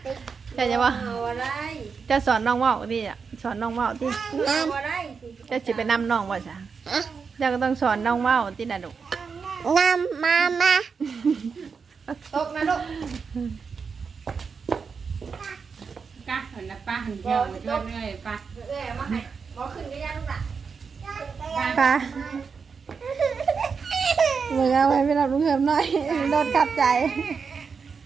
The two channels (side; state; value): left; quieter; 5.6 dB